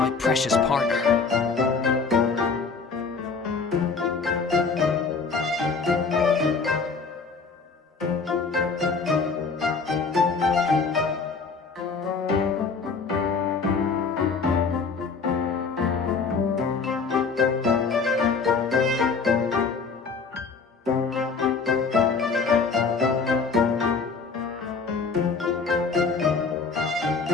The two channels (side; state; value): right; quieter; 4.9 dB